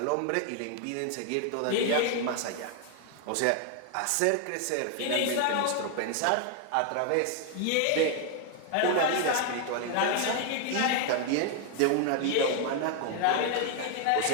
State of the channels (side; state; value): both; different; correlation 0.00